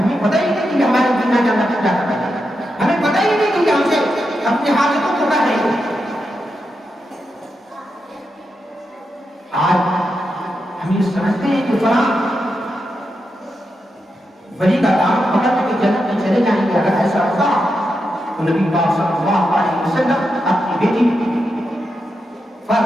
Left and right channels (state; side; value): normal; both; correlation 0.86